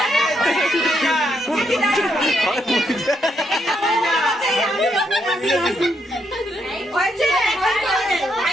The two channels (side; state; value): both; normal; correlation 0.77